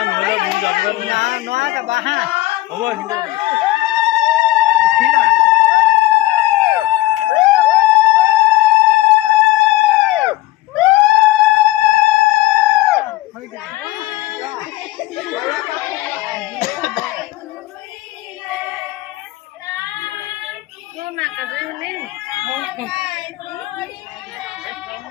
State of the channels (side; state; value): right; quieter; 17.3 dB